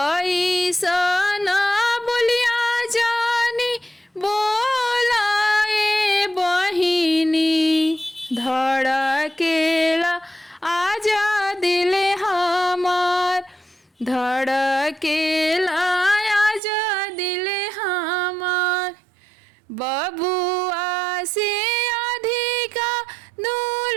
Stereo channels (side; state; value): left; drops out; at 16.6 s